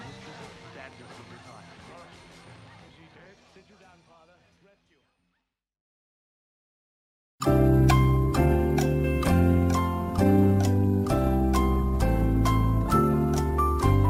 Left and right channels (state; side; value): identical; both; correlation 1.00